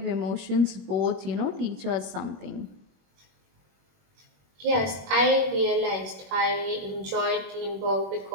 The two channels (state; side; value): late; left; 21 ms